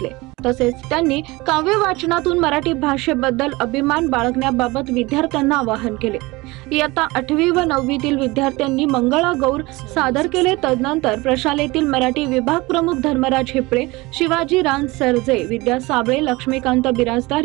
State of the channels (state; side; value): quieter; left; 22.2 dB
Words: तसेच त्यांनी काव्य वाचनातून मराठी भाषेबद्दल अभिमान बाळगण्याबाबत विद्यार्थ्यांना आवाहन केले। इयत्ता 8वी व 9वीतील विद्यार्थ्यांनी मंगळागौर सादर केले। तदनंतर प्रशालेतील मराठी विभाग प्रमुख धर्मराज हिपळे, शिवाजी रान सरजे, विद्या साबळे, लक्ष्मीकांत बिराजदार